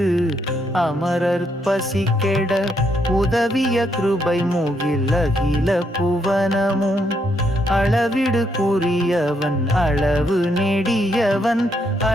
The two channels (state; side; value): normal; both; correlation 0.76